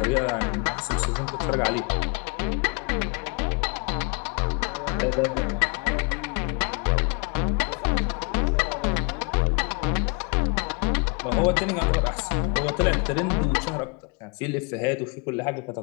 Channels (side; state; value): right; quieter; 34.4 dB